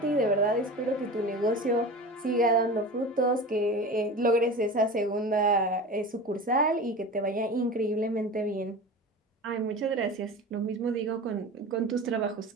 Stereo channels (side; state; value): both; normal; correlation 0.32